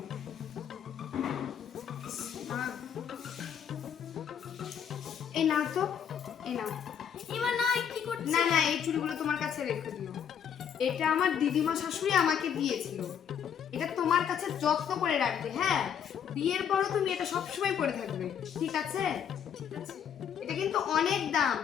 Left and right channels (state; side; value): quieter; right; 8.3 dB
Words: এই নাও তো, এই নাও। এবার না, কি করছি? না না, এই চুড়িগুলো তোমার কাছে রেখে দিও। এটা আমার দিদিমা শাশুড়ি আমাকে দিয়েছিল। এটা তোমার কাছে যত্ন করে রাখবে। হ্যাঁ, বিয়ের পরও তুমি এটা সবসময় পরে থাকবে, ঠিক আছে? এটা কিন্তু অনেক দাম,